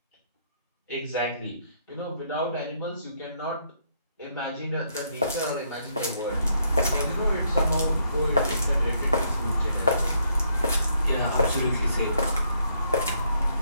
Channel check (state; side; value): inverted; both; correlation -0.72